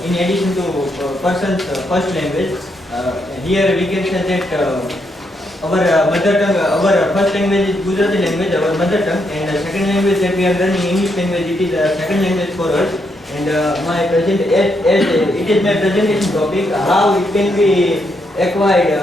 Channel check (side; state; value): both; normal; correlation 0.78